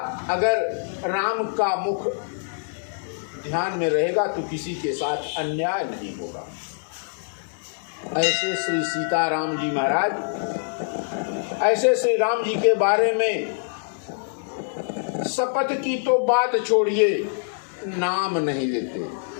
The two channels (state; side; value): silent; right; 59 dB below the other